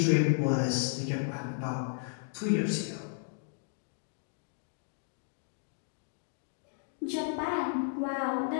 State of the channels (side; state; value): right; silent; digital silence